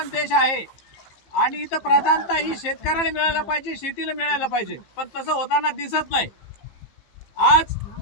देश आहे आणि इथं प्रधानता ही शेतकऱ्याला मिळायला पाहिजे, शेतीला मिळायला पाहिजे, पण तसं होताना दिसत नाही। आज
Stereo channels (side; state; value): right; late; 15 ms